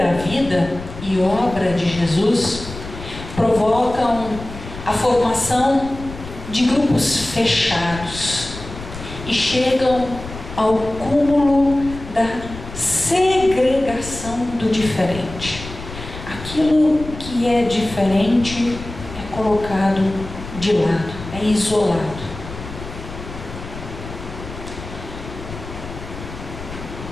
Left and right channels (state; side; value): noise; left; rumble, 12 dB below the sound